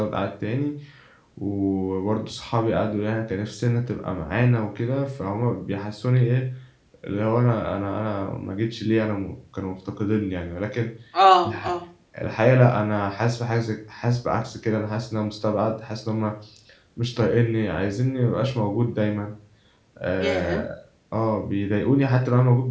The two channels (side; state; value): both; identical; correlation 1.00